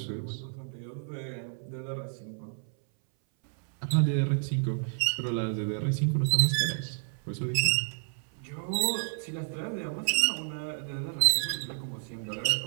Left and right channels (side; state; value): left; silent; 58 dB below the other